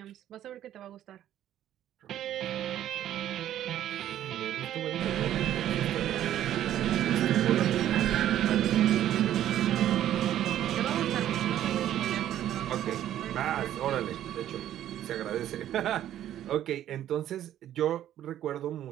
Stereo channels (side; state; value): left; quieter; 11.8 dB